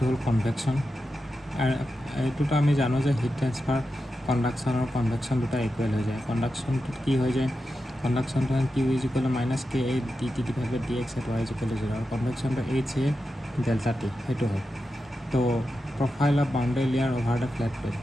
হ'ল কনভেকশ্যন। আৰু এইটোতো আমি জানো যে হিট ট্ৰেন্সফাৰ কণ্ডাকশ্যন আৰু কনভেকশ্যন দুটা ইকুৱেল হৈ যায়। কণ্ডাকশ্যনটোত কি হৈ যায়, কণ্ডাকশ্যনটো Q is equal to minus K A D T divide by D X at Y is equal to 0 আৰু কনভেকশ্যনটো এইচ এ ডেল্টা টি, সেইটো হয়। তো profile of boundary layer over the flat plate,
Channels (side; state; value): both; normal; correlation 0.90